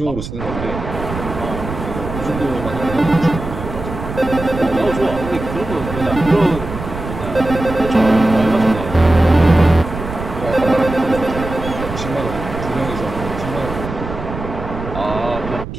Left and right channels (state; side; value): noise; right; rumble, 8 dB below the sound